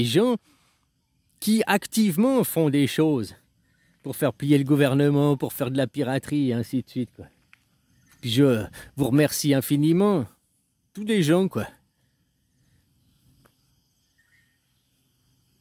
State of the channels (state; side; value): identical; both; correlation 1.00